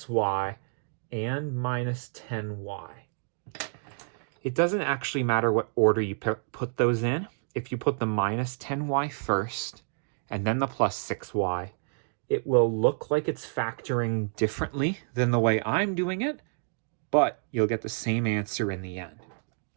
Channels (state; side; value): silent; left; digital silence